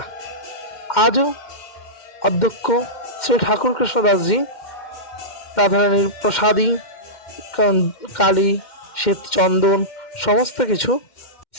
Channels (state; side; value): late; right; 2.1 ms